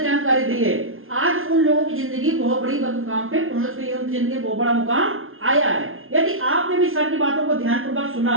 जानकारी दी है, आज उन लोगों की जिंदगी बहुत बड़ी मुकाम पे पहुंच गई है, उनकी जिंदगी बहुत बड़ा मुकाम आया है। यदि आपने भी सर की बातों को ध्यानपूर्वक सुना,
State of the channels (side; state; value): left; late; 0.61 ms